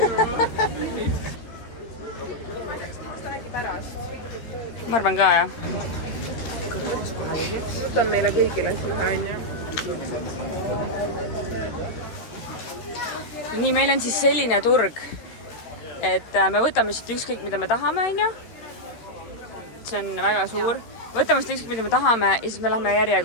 Ma arvan ka, jah. Võtan meile kõigile ühe onju. Nii, meil on siis selline turg, et me võtame siit ükskõik, mida me tahame, onju. See on väga suur. Võtame siit ükskõik, mida me tahame ja siis me lähme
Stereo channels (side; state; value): right; late; 13 ms